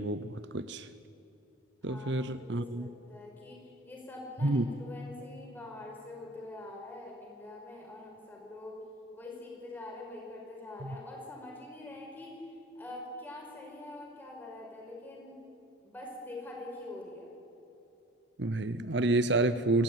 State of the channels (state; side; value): normal; both; correlation 0.45